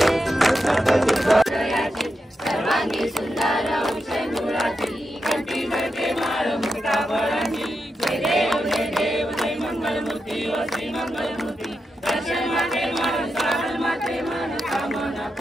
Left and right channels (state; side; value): normal; both; correlation 0.87